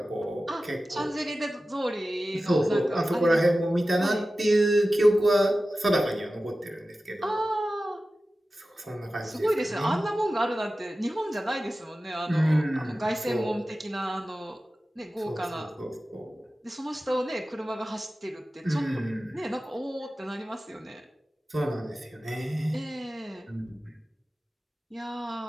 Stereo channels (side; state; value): both; normal; correlation 0.95